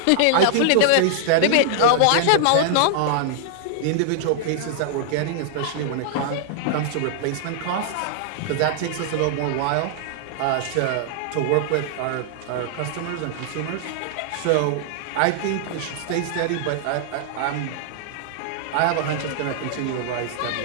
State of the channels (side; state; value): both; different; correlation -0.01